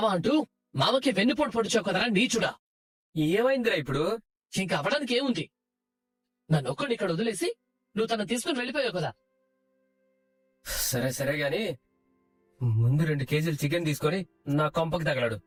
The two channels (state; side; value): identical; both; correlation 1.00